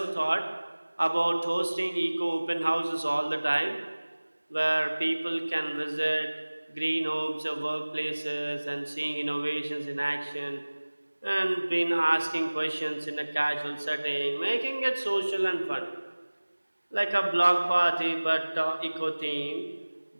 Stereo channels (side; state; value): both; inverted; correlation -1.00